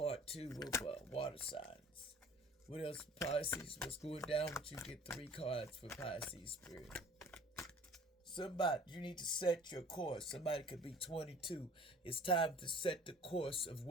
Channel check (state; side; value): normal; both; correlation 0.49